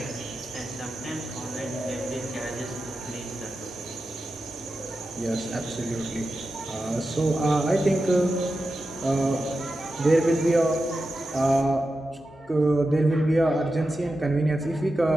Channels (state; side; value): normal; both; correlation 0.91